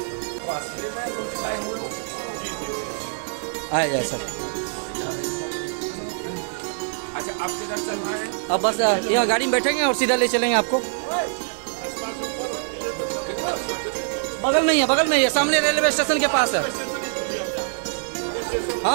आए जाए सब। अच्छा आप किधर चल रहे हैं? अब बस यहाँ गाड़ी में बैठेंगे और सीधा ले चलेंगे आपको। बगल में ही है सामने रेलवे स्टेशन के पास है।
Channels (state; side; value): silent; left; digital silence